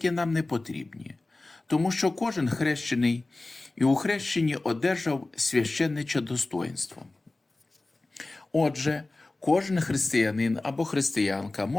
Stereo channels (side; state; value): right; quieter; 3.0 dB